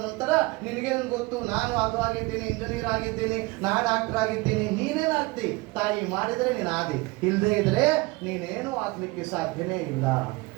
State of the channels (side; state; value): left; quieter; 23.2 dB